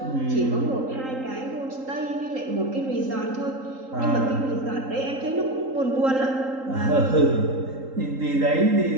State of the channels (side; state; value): left; late; 3.8 ms